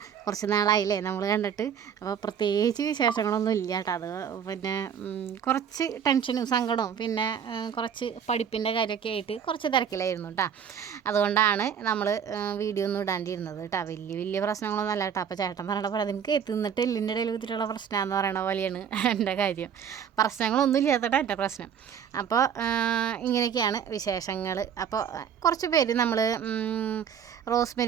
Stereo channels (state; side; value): quieter; left; 8.0 dB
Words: കുറച്ച് നാളായില്ലേ നമ്മൾ കണ്ടിട്ട്. അപ്പോൾ പ്രത്യേകിച്ച് വിശേഷങ്ങളൊന്നും ഇല്ല കേട്ടോ. അത് പിന്നെ കുറച്ച് ടെൻഷനും സങ്കടവും പിന്നെ കുറച്ച് പഠിപ്പിൻ്റെ കാര്യമൊക്കെ ആയിട്ട് കുറച്ച് തിരക്കിലായിരുന്നു കേട്ടോ. അതുകൊണ്ടാണ് നമ്മൾ വീഡിയോ ഒന്നും ഇടാണ്ടിരുന്നത് കേട്ടോ. വലിയ പ്രശ്നങ്ങളൊന്നും അല്ല കേട്ടോ. അപ്പോൾ ചേട്ടൻ പറയണ പോലെ നിങ്ങൾക്ക് തിന്നിട്ട് എല്ലിൻ്റെ ഇടയിൽ കുത്തിയിട്ടുള്ള പ്രശ്നമാണെന്ന് പറയണ പോലെയാണ് എൻ്റെ കാര്യം. പ്രശ്നങ്ങളൊന്നും ഇല്ലാത്തട്ടാ എൻ്റെ പ്രശ്നം. അപ്പോൾ ഇങ്ങനെയൊക്കെയാണ് വിശേഷങ്ങൾ. അപ്പോൾ കുറച്ച് പേര് നമ്മൾ